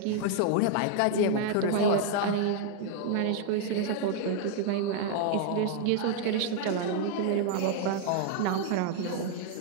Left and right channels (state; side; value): different; both; correlation 0.00